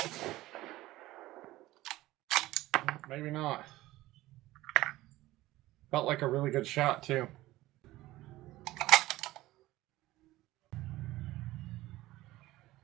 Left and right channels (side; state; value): left; quieter; 17.2 dB